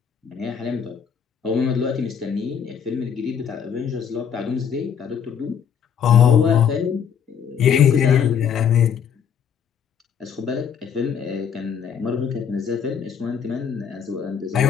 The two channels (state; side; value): quieter; right; 7.6 dB